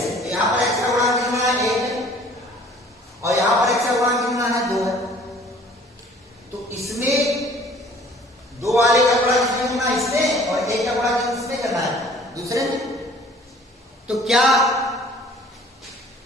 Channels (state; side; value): normal; both; correlation 0.52